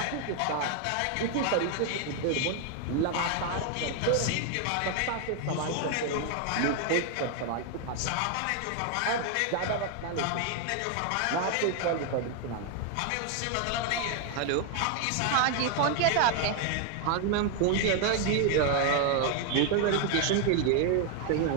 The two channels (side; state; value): both; different; correlation 0.01